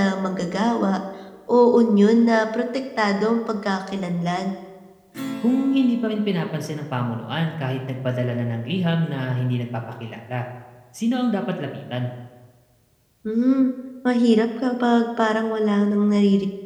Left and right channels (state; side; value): identical; both; correlation 1.00